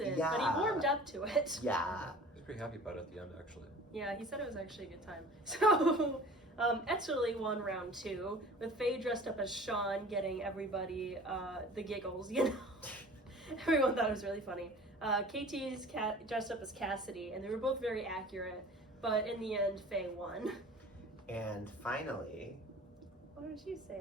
but Yeah. he warmed up to it. Yeah. I was pretty happy about it at the end, actually. Yeah, he said it was actually a good time. So, Italy won round 2, with Faye dressed up as Sean, getting everybody the giggles, Everyone thought it was really funny. KT's dressed up as Cassidy, and they were both very accurate, but in the end, Faye won. And finally, Why don't you say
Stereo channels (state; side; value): normal; both; correlation 0.44